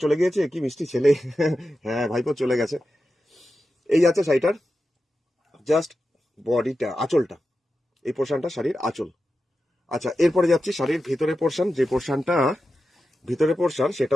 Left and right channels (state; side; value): normal; both; correlation 0.91